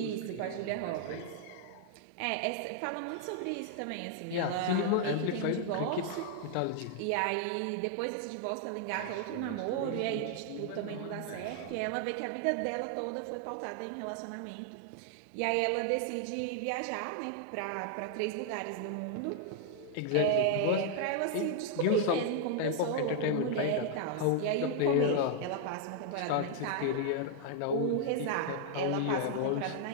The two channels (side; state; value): both; different; correlation 0.00